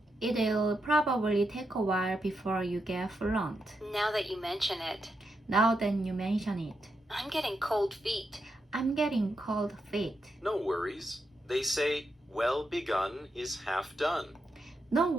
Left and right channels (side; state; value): both; normal; correlation 0.84